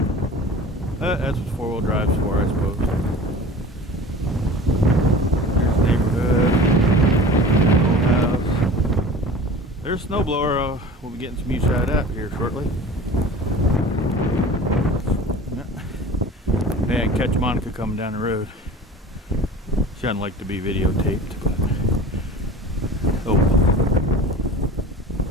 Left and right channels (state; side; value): normal; both; correlation 0.40